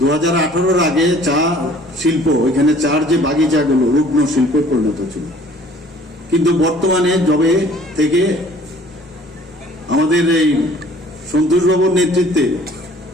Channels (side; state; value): both; normal; correlation 0.53